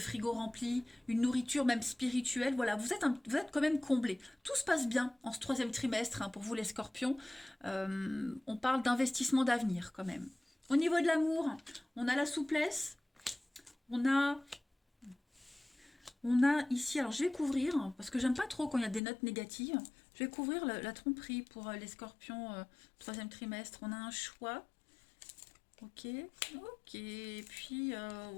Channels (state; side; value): drops out; right; at 19.0 s